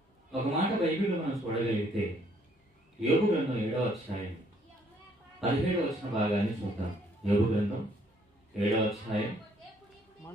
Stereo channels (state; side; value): normal; both; correlation 0.65